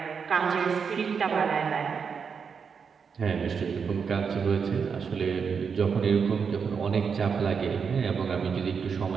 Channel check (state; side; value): quieter; left; 6.1 dB